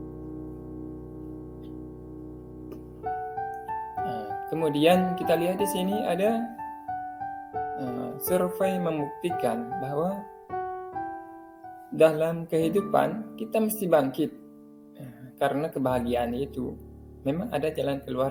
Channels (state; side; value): identical; both; correlation 1.00